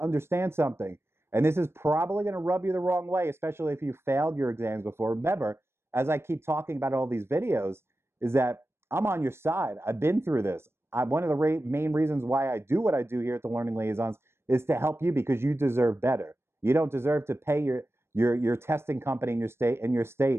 understand something. And this is probably going to rub you the wrong way, especially if you failed your exams before. Remember, as I keep talking about all these videos, is that I'm on your side. I've been through this. One of the main reasons why I do what I do here at the Learning Liaisons is to help you, because you deserve better. You don't deserve to pay your testing company in your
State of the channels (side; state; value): left; late; 0.12 ms